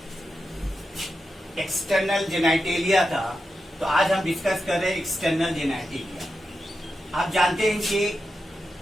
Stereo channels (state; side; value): normal; both; correlation 0.89